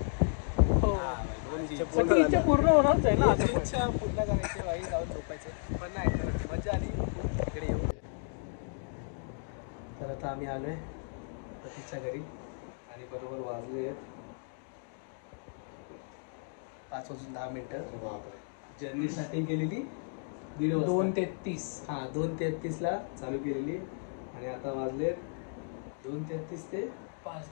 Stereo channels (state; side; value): silent; right; digital silence